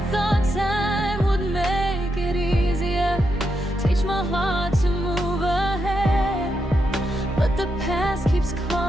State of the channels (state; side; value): normal; both; correlation 0.83